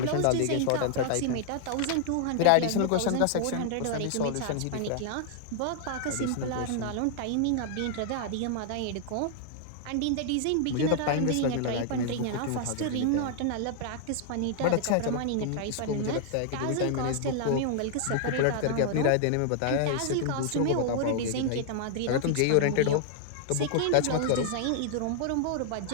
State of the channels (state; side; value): different; both; correlation 0.00